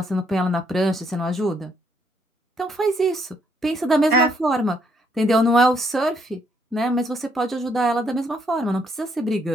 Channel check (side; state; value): both; normal; correlation 0.71